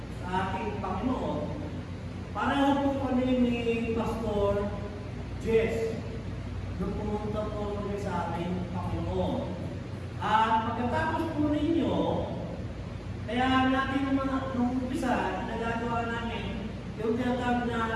sa ating Panginoon, pareho po kami ni Pastor Jess nung pumunta po kami sa ating Panginoon. At pagkatapos po ninyo, kaya natin nung umpisa, nagagawa namin yung tinatawag na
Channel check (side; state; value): both; identical; correlation 1.00